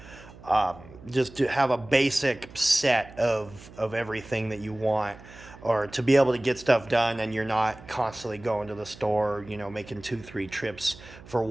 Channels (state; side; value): noise; right; hum, 19 dB below the sound